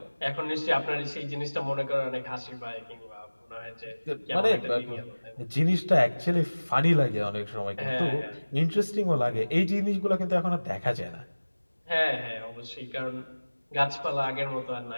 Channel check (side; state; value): both; inverted; correlation -1.00